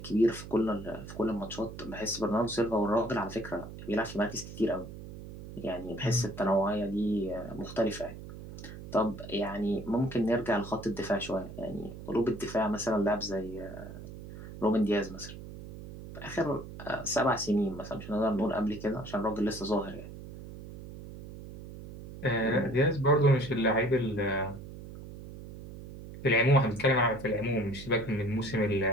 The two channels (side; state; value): right; noise; hum, 13 dB below the sound